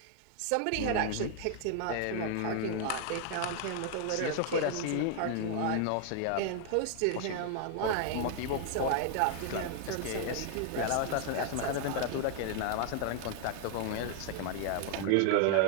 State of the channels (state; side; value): different; both; correlation 0.00